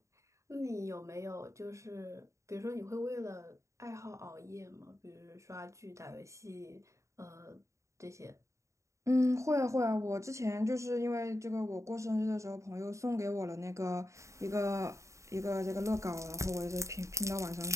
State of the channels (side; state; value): left; late; 0.14 ms